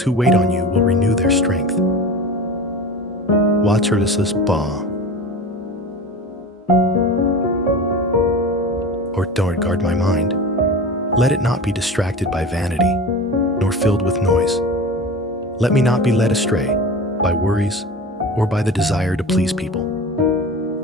who wait on you will renew their strength. Watcherless's ba. Or don't guard my mind. Let it not be distracted by vanity, nor filled with noise. Let me not be led astray by worries or by the desire to please people.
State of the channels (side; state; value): both; normal; correlation 0.32